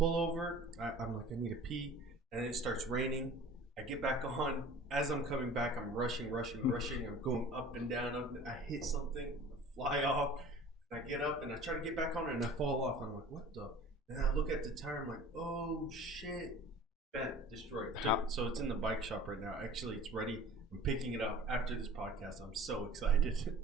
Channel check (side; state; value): both; normal; correlation 0.44